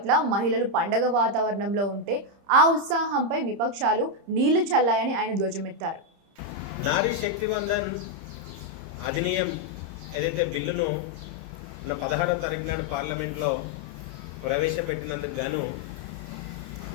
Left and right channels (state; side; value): late; left; 30 ms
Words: మహిళలు పండగ వాతావరణంలో ఉంటే ఆ ఉత్సాహంపై విపక్షాలు నీళ్లు చల్లాయని ఆయన ధ్వజమెత్తారు. నారీ శక్తివందన్ అధినియం ఏదైతే బిల్లును 16వ తారీఖు నాడు పార్లమెంట్లో ప్రవేశపెట్టినందుకు గాను